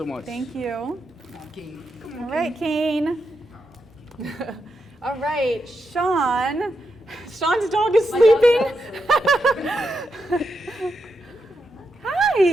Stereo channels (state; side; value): normal; both; correlation 0.85